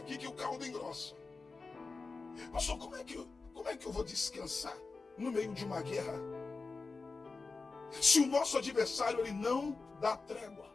que o caldo engrossa. Pastor, como é que eu vou descansar no meio de uma guerra? Se o nosso adversário, ele não dá trégua.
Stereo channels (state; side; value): quieter; right; 4.1 dB